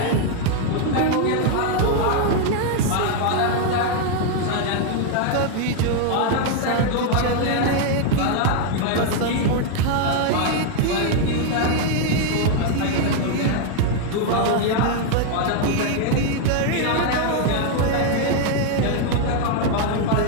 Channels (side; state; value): both; different; correlation 0.00